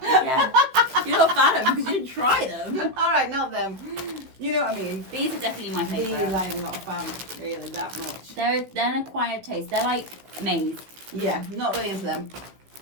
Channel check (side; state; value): left; late; 16 ms